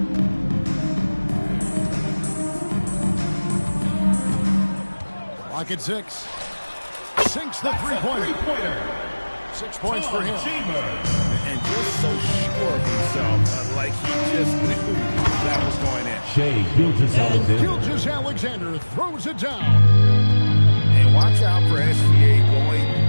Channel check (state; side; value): inverted; both; correlation -1.00